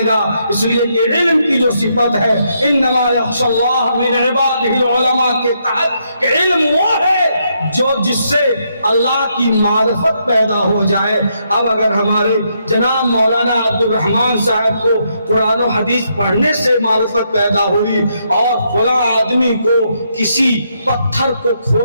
گا۔ اس لیے کہ علم کی جو صفت ہے انما یخشی اللہ من عبادہ العلماء کے تحت، کہ علم وہ ہے جو جس سے اللہ کی معرفت پیدا ہو جائے۔ اب اگر ہمارے جناب مولانا عبد الرحمن صاحب کو قرآن و حدیث پڑھنے سے معرفت پیدا ہوئی اور فلاں آدمی کو کسی پتھر کو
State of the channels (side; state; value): both; inverted; correlation -0.77